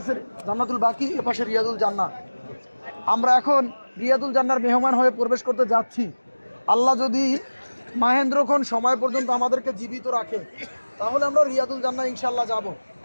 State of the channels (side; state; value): both; inverted; correlation -1.00